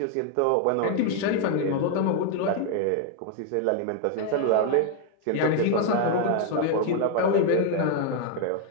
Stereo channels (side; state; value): both; different; correlation 0.00